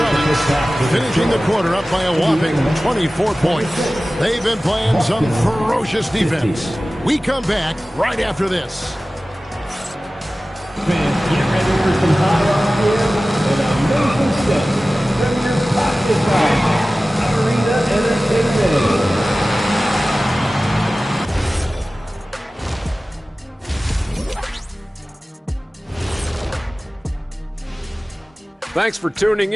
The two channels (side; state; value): both; normal; correlation 0.97